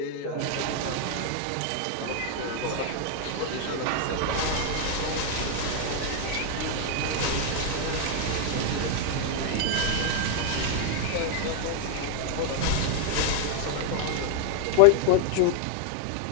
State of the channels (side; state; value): both; different; correlation 0.00